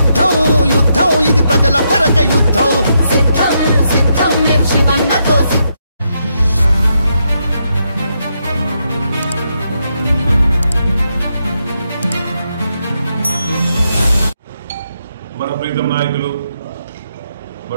యుద్ధం ఇది ప్రజల కొరక యుద్ధం సిద్ధం సిద్ధం శివన్నతో సిద్ధం. మన ప్రీతం నాయకులు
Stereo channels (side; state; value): both; inverted; correlation -0.81